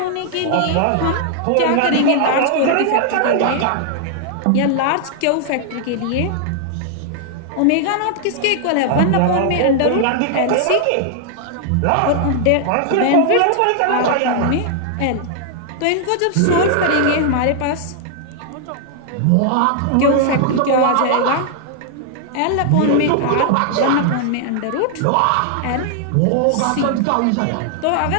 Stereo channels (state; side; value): different; both; correlation -0.01